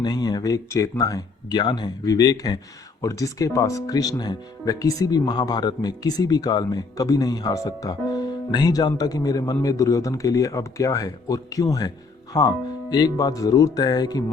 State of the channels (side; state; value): right; quieter; 4.2 dB